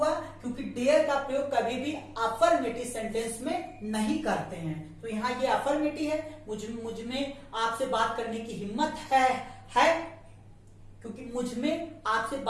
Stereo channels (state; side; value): identical; both; correlation 1.00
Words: क्योंकि डेयर का प्रयोग कभी भी अफर्मेटिव सेंटेंस में नहीं करते हैं। तो यहाँ ये अफर्मेटिव है, मुझ में आपसे बात करने की हिम्मत है, क्योंकि मुझ में आपसे